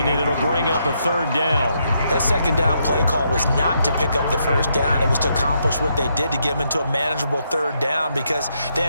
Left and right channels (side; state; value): both; inverted; correlation -0.77